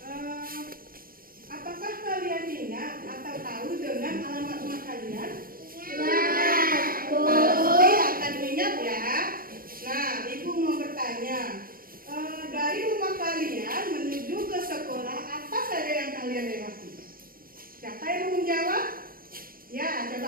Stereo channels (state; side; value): late; left; 0.42 ms